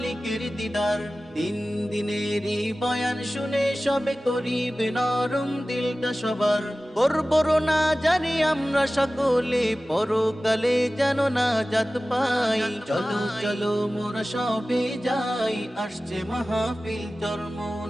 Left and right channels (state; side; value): normal; both; correlation 0.96